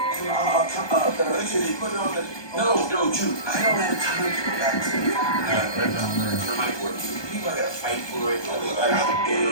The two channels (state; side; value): late; right; 1.2 ms